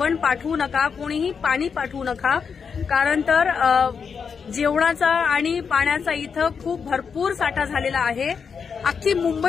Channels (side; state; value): right; quieter; 6.1 dB